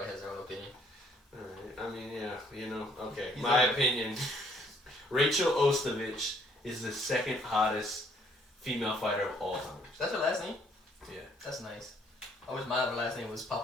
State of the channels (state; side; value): normal; both; correlation 0.64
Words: has their own opinion. Alright, I mean, yeah, you know, okay. He's My okay. opinion, Rachel Ostovich is the second hottest female fighter of all time. That's her last name? Yeah. That's nice. I wish my other last name was